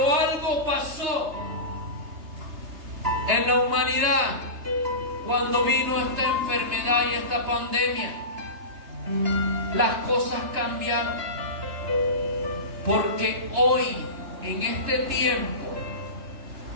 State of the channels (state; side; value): late; left; 3.3 ms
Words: algo pasó en la humanidad cuando vino esta enfermedad y esta pandemia. Las cosas cambiaron, porque hoy, en este tiempo,